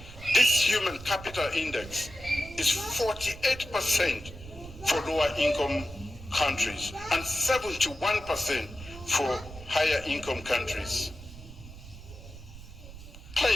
this Human Capital Index is 48% for lower income countries and 71% for higher income countries.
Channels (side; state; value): right; noise; rumble, 15 dB below the sound